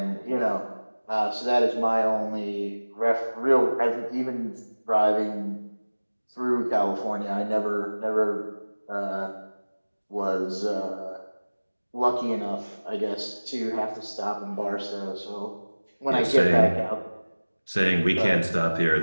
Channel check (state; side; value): inverted; both; correlation -1.00